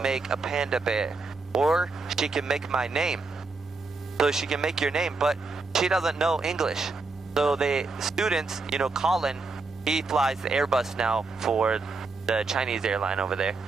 make a panda bear, or she can make my name. So she can make your name, but she doesn't know English. So the students, you know, Colin, he flies the Airbus now for the Chinese airline over there.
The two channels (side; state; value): left; quieter; 3.9 dB